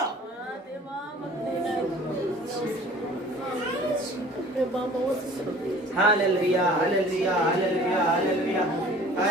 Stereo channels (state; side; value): normal; both; correlation 0.48